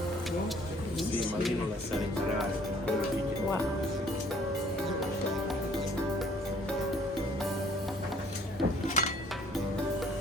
Sì, ma io non lasciare imparare, quello che Wow.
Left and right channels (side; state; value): both; normal; correlation 0.58